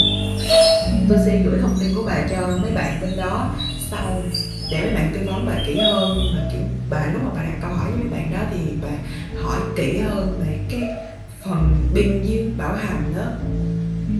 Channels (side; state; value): both; identical; correlation 1.00